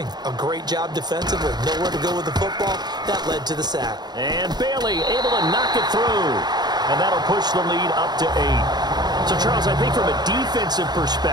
A great job defensively. Nowhere to go with the football. That led to the sack. And Bailey able to knock it through. And that'll push the lead up to 8. So, Charles, I think from a defensive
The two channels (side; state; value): left; late; 0.20 ms